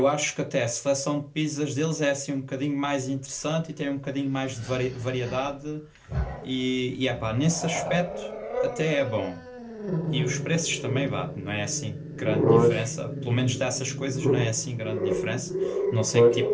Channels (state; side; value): identical; both; correlation 1.00